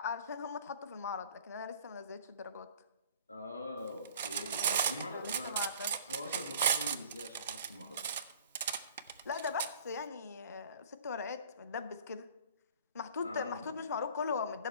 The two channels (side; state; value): both; inverted; correlation -0.48